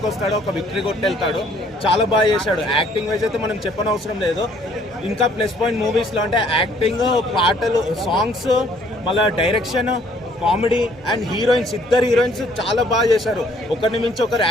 వస్తాడు, ఒక విక్టరీ కొట్టి వెళ్తాడు. చాలా బాగా చేశాడు. యాక్టింగ్ వైజ్ అయితే మనం చెప్పనవసరం లేదు. ఇంకా ప్లస్ పాయింట్ మూవీస్లో అంటే యాక్టింగ్, పాటలు, సాంగ్స్, మళ్ళీ డైరెక్షన్, కామెడీ అండ్ హీరోయిన్స్. ఇద్దరు హీరోయిన్స్ చాలా బాగా చేశారు. ఒకరిని మించి ఒకరు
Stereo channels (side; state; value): both; normal; correlation 0.62